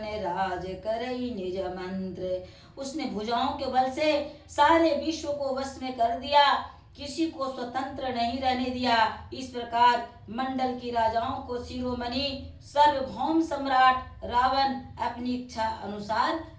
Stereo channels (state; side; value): identical; both; correlation 1.00